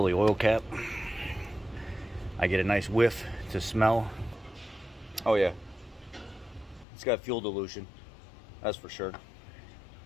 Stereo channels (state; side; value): drops out; right; at 6.9 s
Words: the oil cap. I get a nice whiff to smell. Oh yeah, it's got fuel dilution, that's for sure.